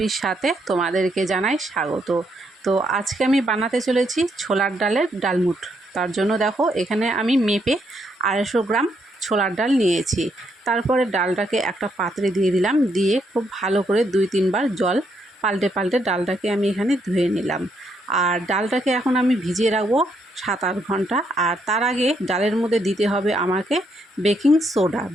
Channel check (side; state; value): both; normal; correlation 0.75